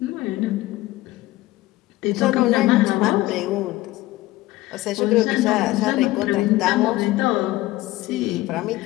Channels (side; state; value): right; quieter; 17.6 dB